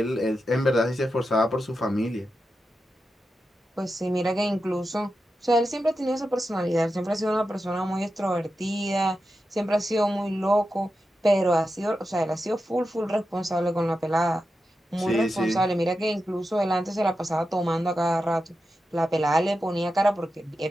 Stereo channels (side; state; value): both; normal; correlation 0.90